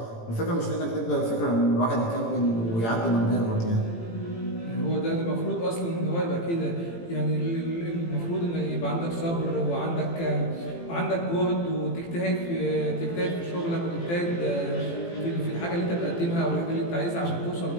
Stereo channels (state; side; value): late; right; 18 ms